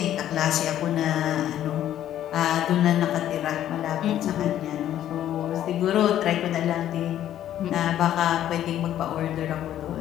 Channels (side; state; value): right; quieter; 11.6 dB